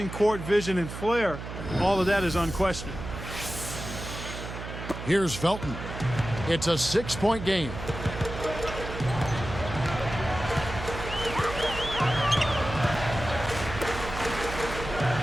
court vision, and flair, all of that is unquestioned. Here's Felton. It's a 6-point game.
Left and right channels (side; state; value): right; noise; hum, 9 dB below the sound